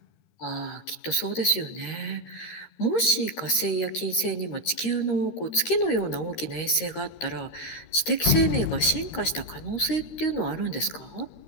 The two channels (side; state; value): right; late; 13 ms